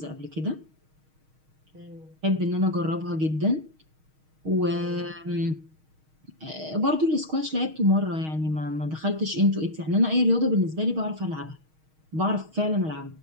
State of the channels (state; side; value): late; left; 6.4 ms